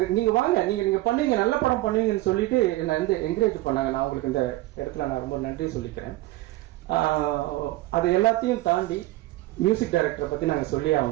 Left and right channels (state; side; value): quieter; left; 18.2 dB